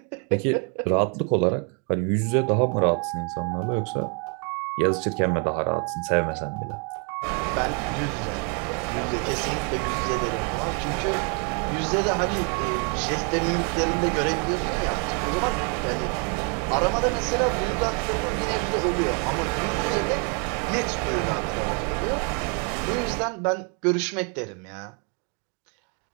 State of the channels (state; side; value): quieter; left; 37.5 dB